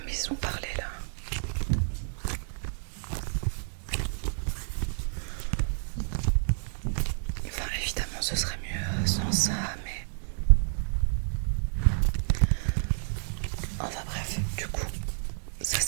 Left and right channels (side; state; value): left; silent; digital silence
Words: maison parler là. Enfin évidemment ce serait mieux sans ça, mais enfin bref, du coup ça